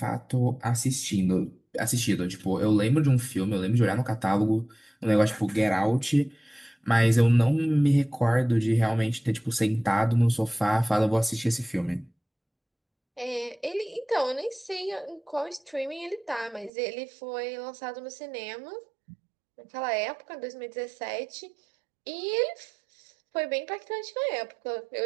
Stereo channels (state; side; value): drops out; left; at 16.7 s